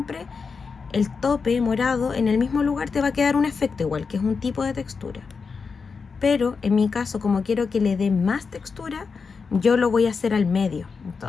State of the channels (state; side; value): quieter; right; 5.1 dB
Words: el tope morado en el mismo lugar te va a quedar un efecto igual, que es un tipo de textura. Pero en mi caso, como quiero que le dé más textura, yo lo voy a hacer al medio.